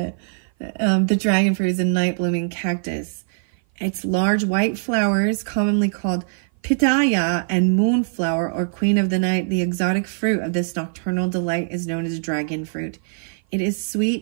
The dragon fruit is a night blooming cactus. Its large white flowers, commonly called pitaya and moonflower or queen of the night, the exotic fruit of this nocturnal delight is known as dragon fruit. It is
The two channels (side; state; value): left; silent; 57 dB below the other